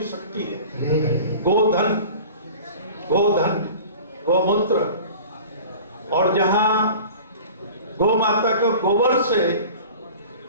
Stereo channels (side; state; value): both; inverted; correlation -0.41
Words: शक्ति है। गोधन, गौमूत्र, और जहां गौ माता का गोबर से